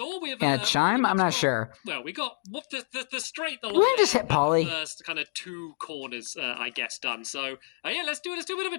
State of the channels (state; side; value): silent; right; digital silence